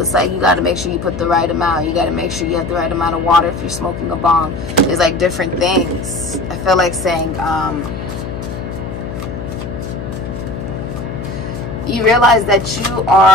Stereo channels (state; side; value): noise; left; hum, 7 dB below the sound